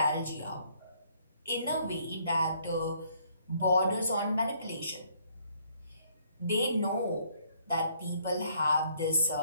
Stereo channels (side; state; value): both; inverted; correlation -0.66